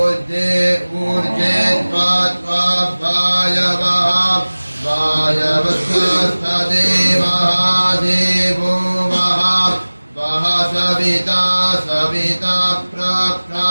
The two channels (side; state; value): both; inverted; correlation -1.00